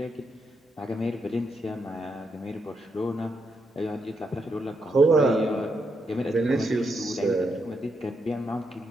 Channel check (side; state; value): both; normal; correlation 0.81